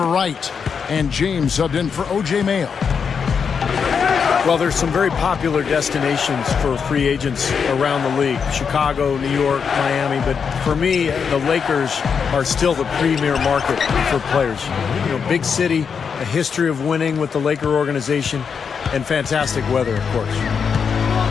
Wright. And James subbed in for O.J. Mayo. Well, there's some very popular destinations for free agents around the league. Chicago, New York, Miami. But for me, the Lakers are still the premier market for players. You know, big city, a history of winning with the Laker organization, and fantastic weather, of course.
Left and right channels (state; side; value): quieter; right; 6.3 dB